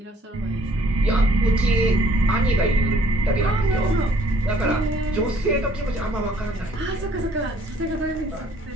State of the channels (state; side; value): normal; both; correlation 0.61